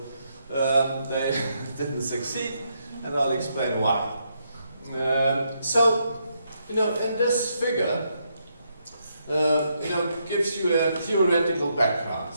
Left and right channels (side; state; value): both; inverted; correlation -0.78